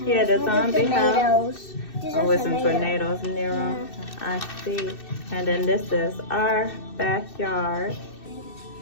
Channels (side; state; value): right; late; 2.6 ms